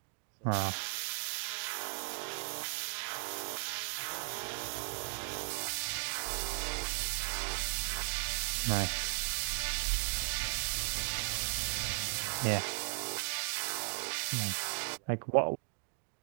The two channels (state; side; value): silent; left; digital silence